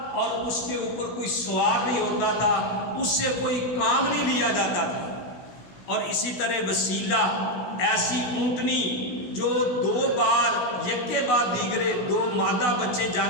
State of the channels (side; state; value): right; late; 16 ms